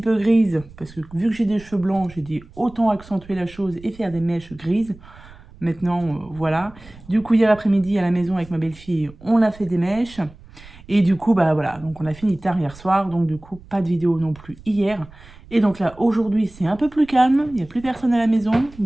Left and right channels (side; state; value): right; noise; rumble, 21 dB below the sound